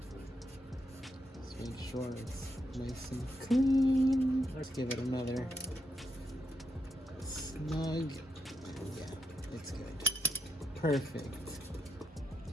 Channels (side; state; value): both; normal; correlation 0.83